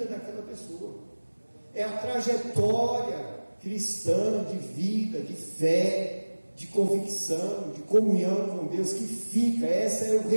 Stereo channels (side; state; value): both; inverted; correlation -1.00